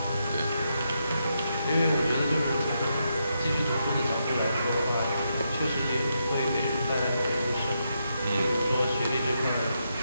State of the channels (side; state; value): both; inverted; correlation -0.82